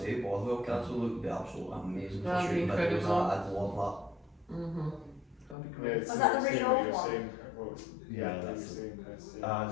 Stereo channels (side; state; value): right; drops out; at 5.6 s